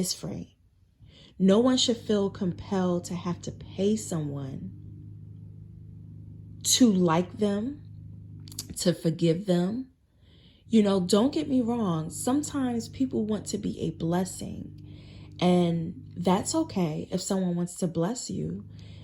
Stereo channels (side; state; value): both; identical; correlation 1.00